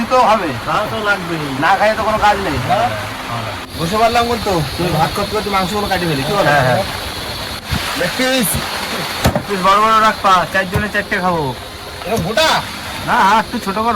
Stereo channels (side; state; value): both; identical; correlation 1.00